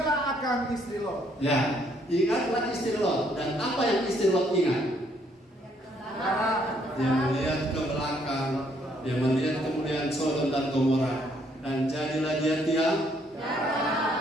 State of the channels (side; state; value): both; normal; correlation 0.69